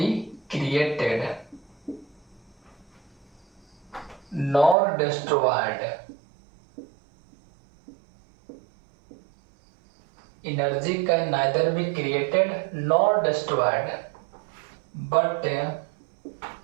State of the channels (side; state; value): left; drops out; at 4.8 s